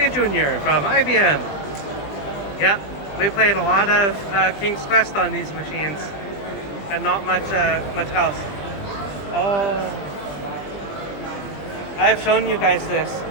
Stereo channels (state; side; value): late; right; 20 ms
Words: Junior from IBM. Yep, we played a lot of King's Quest on these machines, and not much else. Oh, I've shown you guys this.